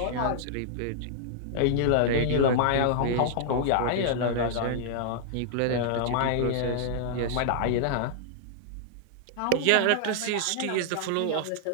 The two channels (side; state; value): both; different; correlation -0.01